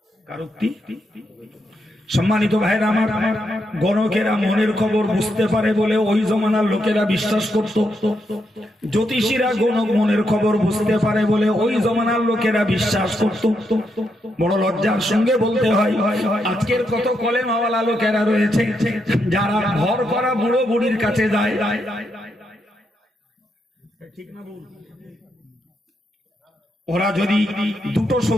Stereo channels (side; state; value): both; normal; correlation 0.81